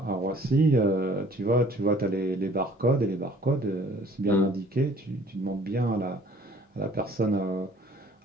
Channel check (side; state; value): both; normal; correlation 0.55